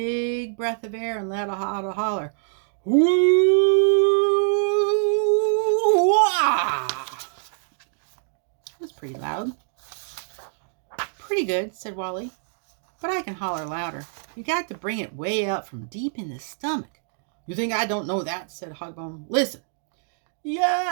breath of air and let out a holler. Woo-wah! It was pretty loud. "Pretty good," said Wally, "but I can holler louder. You got to bring it way up from deep in the stomach." "You think I don't know that?" said Hogbone. "Listen.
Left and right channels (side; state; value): left; silent; digital silence